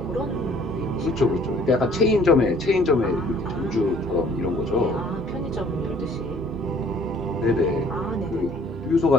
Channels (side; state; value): both; normal; correlation 0.57